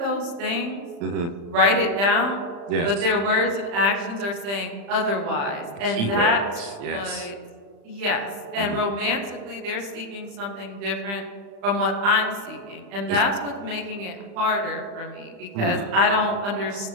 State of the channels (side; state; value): left; late; 35 ms